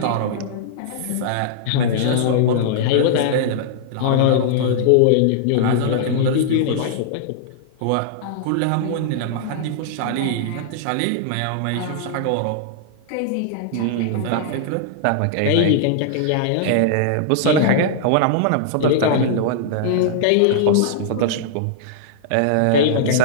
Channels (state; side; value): different; both; correlation -0.01